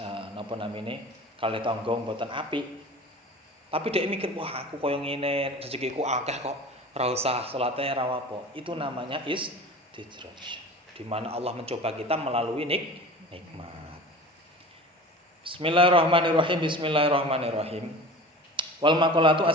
napa namine kalih tangga mboten apik. Tapi dhek mikir, wah aku koyo ngene, rezekiku akeh kok ora usah salate ora apa. Itu namanya istidraj. Di mana Allah mencoba kita melalui nikmat. Bismillahirrahmanirrahim. Wal maqalatu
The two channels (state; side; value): normal; both; correlation 0.38